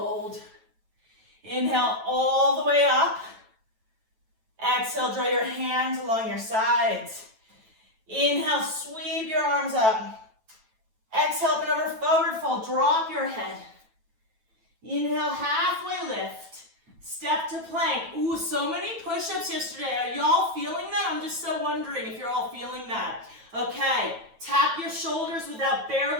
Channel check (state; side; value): late; left; 9.1 ms